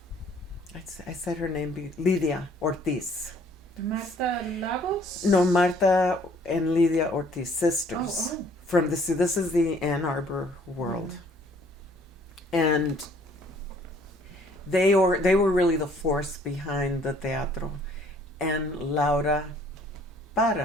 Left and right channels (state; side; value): normal; both; correlation 0.59